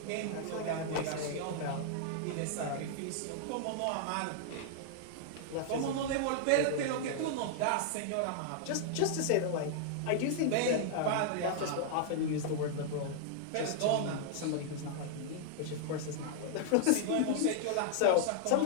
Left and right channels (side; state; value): both; different; correlation -0.01